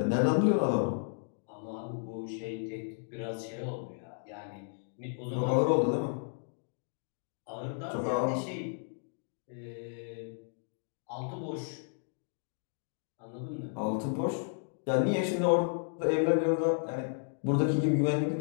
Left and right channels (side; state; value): right; silent; digital silence